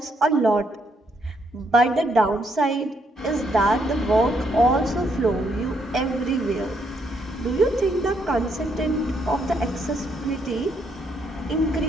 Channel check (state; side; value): normal; both; correlation 0.74